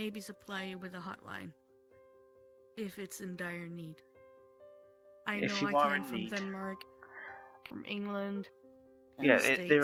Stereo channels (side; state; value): both; identical; correlation 1.00